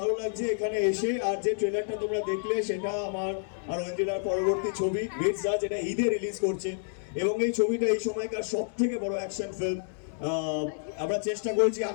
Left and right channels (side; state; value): right; silent; digital silence